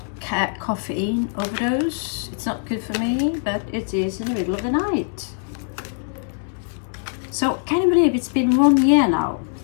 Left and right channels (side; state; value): right; silent; 64 dB below the other